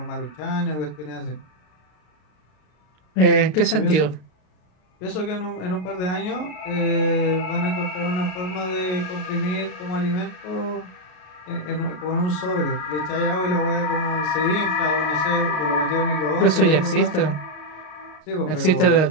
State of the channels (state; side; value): late; right; 32 ms